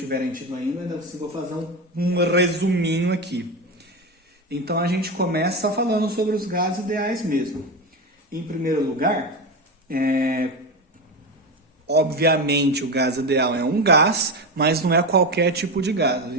tido ainda, eu vou fazer um resuminho aqui. Então a gente começa falando sobre os gases ideais mesmo. Em primeiro lugar, obviamente o gás ideal é um gás, mas não é qualquer tipo de gás. A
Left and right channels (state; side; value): normal; both; correlation 0.18